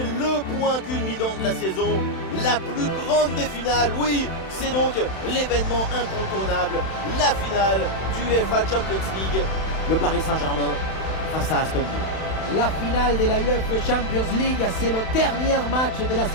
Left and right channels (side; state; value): right; late; 31 ms